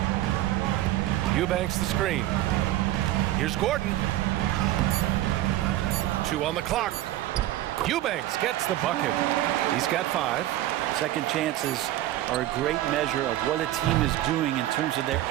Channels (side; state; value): left; quieter; 14.6 dB